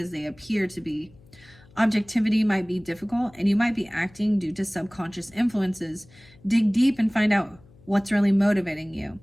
they appear to be. Objectivity might be difficult, and you might be acting due to subconscious influences. Dig deep and find out what's really motivating you.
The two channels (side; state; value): left; noise; hum, 26 dB below the sound